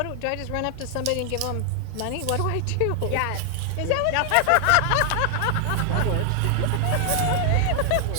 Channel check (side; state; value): both; different; correlation 0.00